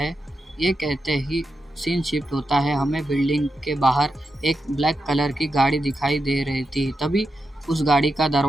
ये कहते ही सीन शिफ्ट होता है। हमें बिल्डिंग के बाहर एक ब्लैक कलर की गाड़ी दिखाई दे रही थी। तभी उस गाड़ी का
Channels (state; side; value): normal; both; correlation 0.88